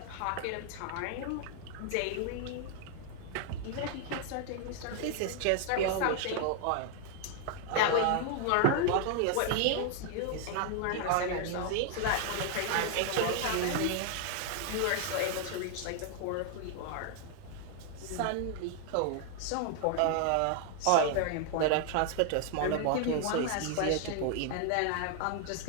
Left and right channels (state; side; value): different; both; correlation 0.00